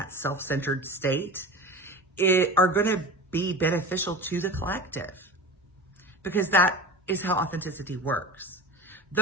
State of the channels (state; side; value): normal; both; correlation 0.32